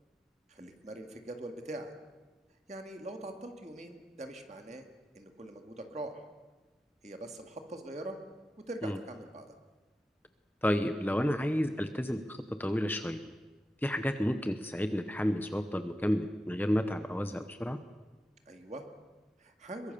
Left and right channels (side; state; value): both; normal; correlation 0.91